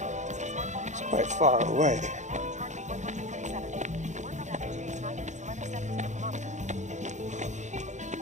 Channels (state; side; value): late; left; 0.35 ms